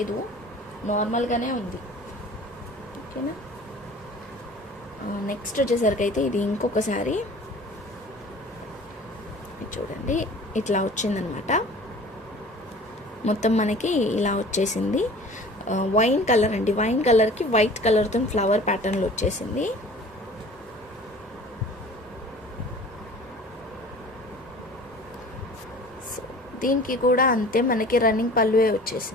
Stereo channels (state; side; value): normal; both; correlation 0.45